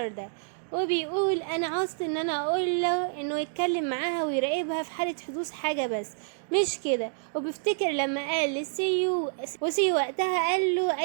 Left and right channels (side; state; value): left; silent; digital silence